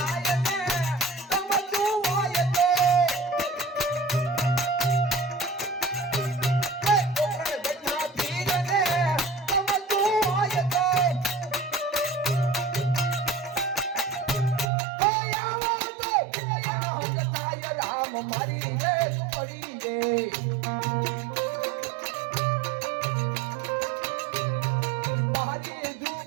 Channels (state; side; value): drops out; left; at 14.7 s